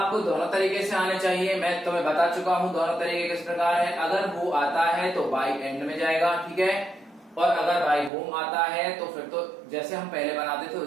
दोनों तरीके से आने चाहिए। मैं तुम्हें बता चुका हूं दोनों तरीके किस प्रकार है। अगर हु आता है तो बाय एंड में जाएगा, ठीक है, और अगर बाय होम आता है तो फिर तो जैसे हम पहले बनाते थे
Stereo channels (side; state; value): left; drops out; at 8.1 s